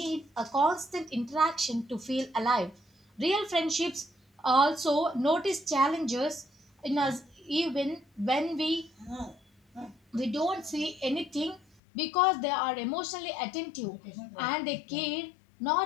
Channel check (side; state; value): right; drops out; at 11.7 s